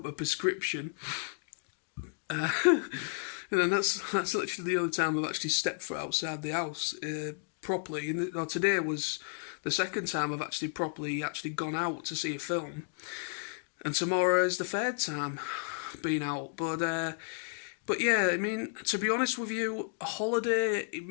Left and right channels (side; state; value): right; silent; digital silence